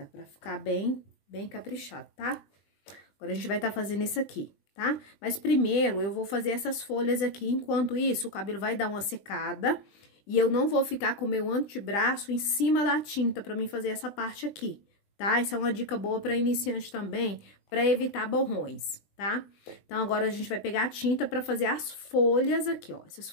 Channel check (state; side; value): late; right; 20 ms